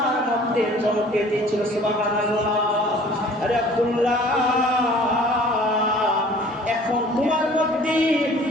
মধ্যে চমকে দিয়েছিল। সুবহানাল্লাহ। আরে আব্দুল্লাহ, এখন তোমার মধ্যে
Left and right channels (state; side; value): normal; both; correlation 0.50